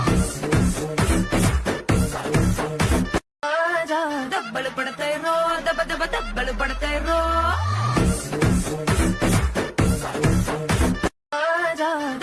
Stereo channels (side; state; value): both; identical; correlation 1.00